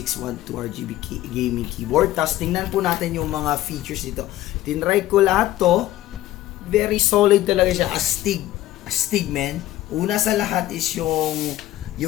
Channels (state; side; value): quieter; right; 14.8 dB